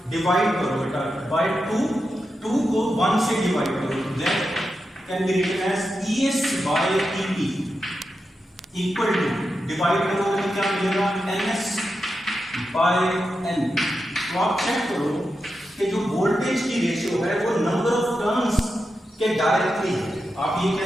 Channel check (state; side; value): normal; both; correlation 0.89